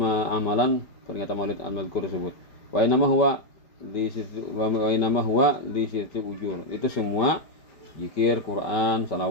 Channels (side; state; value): right; late; 5.2 ms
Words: amalan peringatan maulid al-mazkur tersebut. Wa inama huwa li sitti ujur. Itu semua zikir, Quran,